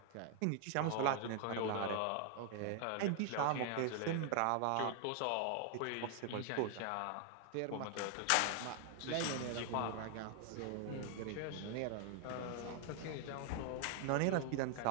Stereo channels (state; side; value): different; both; correlation 0.00